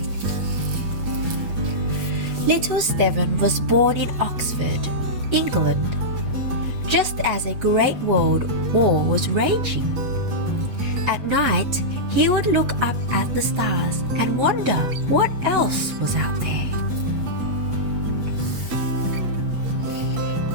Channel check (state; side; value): late; left; 8.3 ms